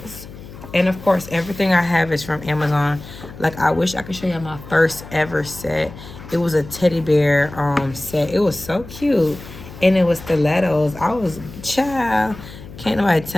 And of course, everything I have is from Amazon. Like, I wish I could show you my first ever set. It was a teddy bear set. It was so cute. And it was stilettos. I was, child, can't nobody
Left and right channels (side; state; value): left; noise; hum, 16 dB below the sound